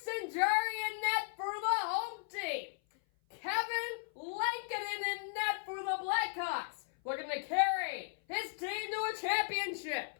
Jarry in net for the home team. Kevin Lankinen in net for the Blackhawks, looking to carry his team to a championship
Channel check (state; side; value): silent; right; 54 dB below the other